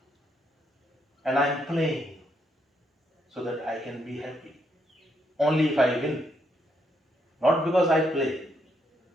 and I am playing so that I can be happy. Only if I win. Not because I play,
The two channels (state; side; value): normal; both; correlation 0.76